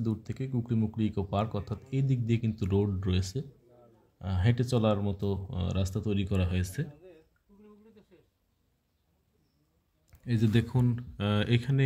দূর থেকে কুকরিমুকরি ইকো পার্ক, অর্থাৎ এই দিক দিয়ে কিন্তু রোড রয়েছে, হেঁটে চলার মতো রাস্তা তৈরি করা হয়েছে। এই যে দেখুন, এখানে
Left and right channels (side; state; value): both; identical; correlation 1.00